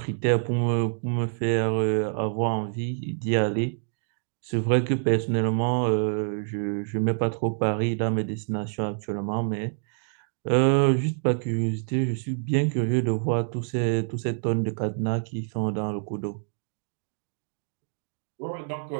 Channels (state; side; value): silent; left; digital silence